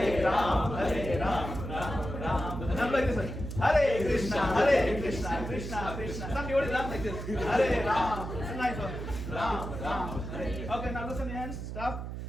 Ram, Ram, Ram. And I'm like this one. Hare Krishna, Krishna, Krishna. Some devotees laugh like this. Hare Ram. It's a nice one. Ram, Hare. Okay, now loosen your hands. Stop.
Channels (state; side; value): noise; right; hum, 7 dB below the sound